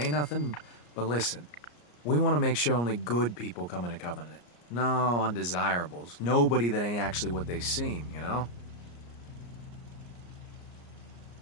nothing, but listen. We want to make sure only good people come into Covenant. No undesirables. Nobody that ain't actually what they seem, you know?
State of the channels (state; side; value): late; right; 34 ms